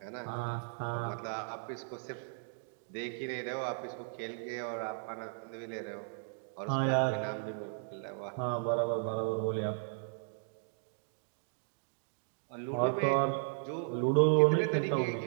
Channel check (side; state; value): left; silent; digital silence